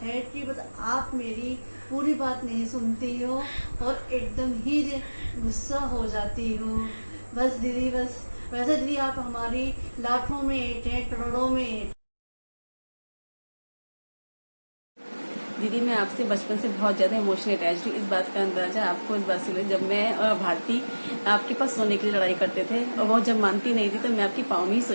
है कि बस आप मेरी पूरी बात नहीं सुनती हो और एकदम ही गुस्सा हो जाती हो। बस दीदी, बस वैसे दीदी आप हमारी लाखों में एक हैं, करोड़ों में एक। दीदी मैं आपसे बचपन से बहुत ज़्यादा इमोशनल अटैच हूँ। इस बात का अंदाजा आपको इस बात से, जब मैं और भारती आपके पास सोने के लिए लड़ाई करते थे और वो जब मानती नहीं थी तो मैं आपकी पाँव में ही सो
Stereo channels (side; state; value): both; inverted; correlation -1.00